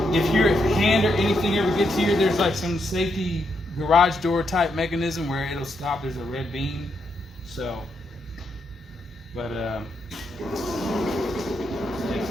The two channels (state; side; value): normal; both; correlation 0.80